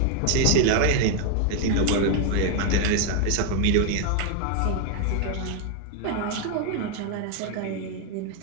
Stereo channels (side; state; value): both; different; correlation 0.00